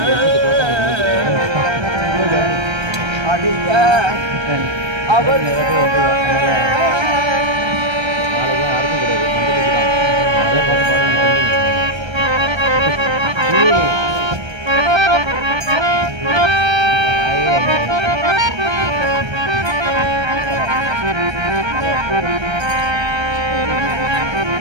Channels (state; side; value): late; left; 1.3 ms